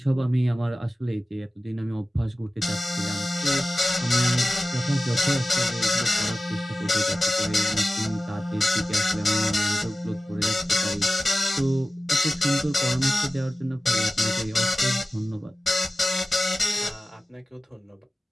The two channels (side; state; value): both; normal; correlation 0.96